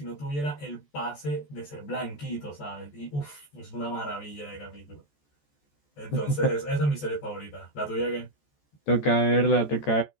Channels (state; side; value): late; right; 14 ms